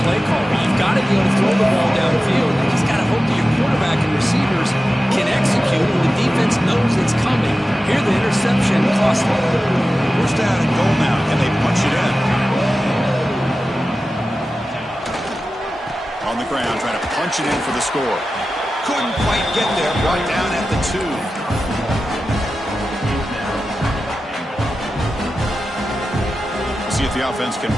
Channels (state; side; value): normal; both; correlation 0.93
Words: play caller. You've got to be able to throw the ball downfield. You just got to hope that your quarterback and receivers can execute and the defense knows it's coming. Here the interception cost them. First down and goal now, and they punch it in. On the ground, trying to punch it in for the score. Couldn't quite get there, brought down at the 2. See if the offense can